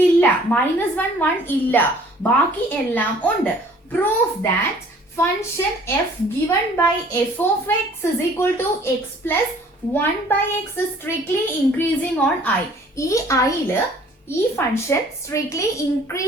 -1 1 ഇല്ല, ബാക്കി എല്ലാം ഉണ്ട്. Proof that function f given by f of x is equal to x plus 1 by x is strictly increasing on I. ഈ I-ല് ഈ ഫംഗ്ഷൻ സ്ട്രിക്ട്ലി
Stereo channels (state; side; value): normal; both; correlation 0.54